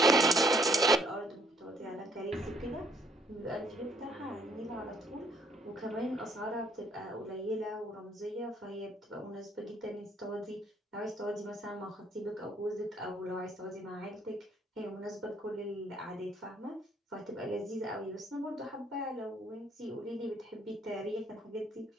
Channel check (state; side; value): normal; both; correlation 0.65